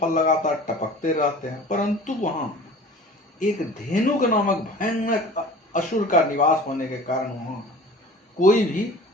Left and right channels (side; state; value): both; normal; correlation 0.42